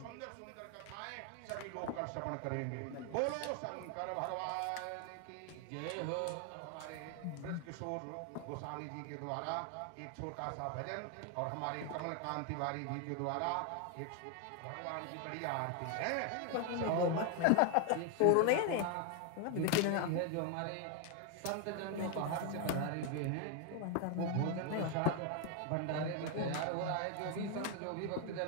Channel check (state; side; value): different; both; correlation 0.01